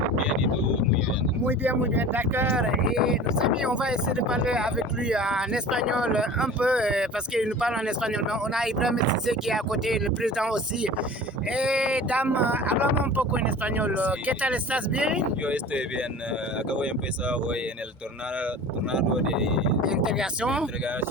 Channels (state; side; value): normal; both; correlation 0.39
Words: Bien, ¿y tú? Muy bien. Muy bien, d'accord. Et nos amis, on va essayer de parler avec lui en espagnol un peu, parce qu'il nous parle en espagnol. Mais on a Ibrahim Cissé qui est à côté, le président aussi. Dame, hablamos un poco en español. Sí. ¿Qué tal? ¿Estás bien? Yo estoy bien. Acabo de empezar hoy en el tornado de Integración.